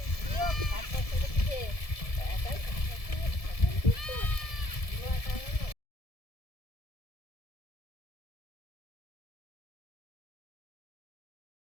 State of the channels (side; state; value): right; late; 1.7 ms